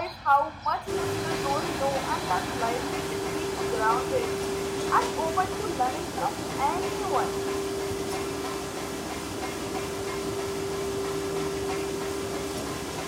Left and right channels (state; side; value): identical; both; correlation 1.00